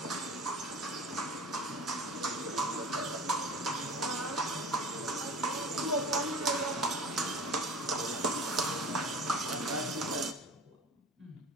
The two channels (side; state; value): both; normal; correlation 0.38